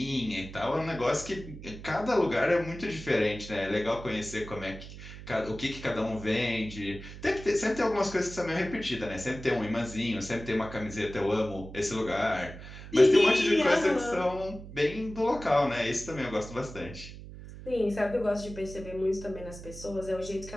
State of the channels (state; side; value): noise; right; hum, 13 dB below the sound